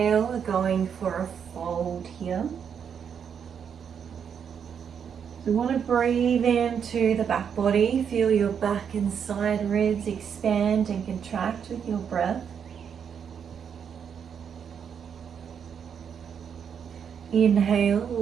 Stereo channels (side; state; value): left; quieter; 7.5 dB